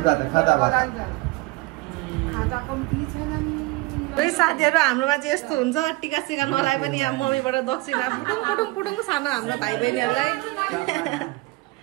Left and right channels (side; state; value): left; quieter; 21.9 dB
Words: कम्ती छैन नि साथीहरू हाम्रोमा चाहिँ यस्तो हुन्छ टिका सिका नलाए पनि यहाँ मम्मीबाट दक्षिणा पुटुङ सानो हाम्रो भाइ बहिनीहरूलाई